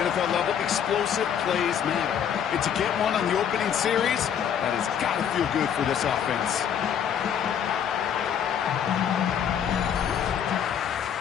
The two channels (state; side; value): quieter; right; 8.5 dB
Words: level, explosive plays matter. And to get one on the opening series, that has got to feel good for this offense.